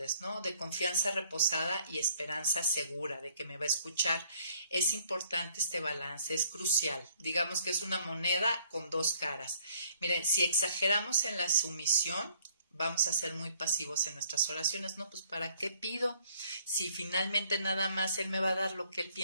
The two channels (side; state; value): both; inverted; correlation -0.62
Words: ¿no? De confianza reposada y esperanza segura de que me va a escuchar. Es importante este balance, es crucial. Digamos que es una moneda con 2 caras. Miren, si exageramos en la sumisión, vamos a ser muy pasivos en nuestras oraciones, ¿no? Pues ¿para qué pido? Si finalmente nada más Él me va a dar lo que Él